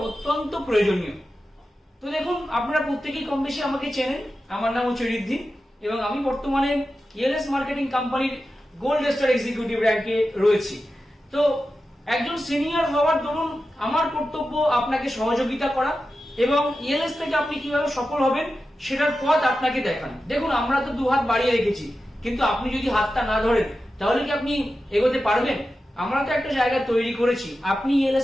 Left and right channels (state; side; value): normal; both; correlation 0.92